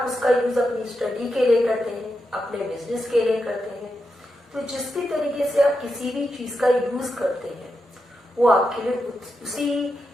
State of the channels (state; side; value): normal; both; correlation 0.86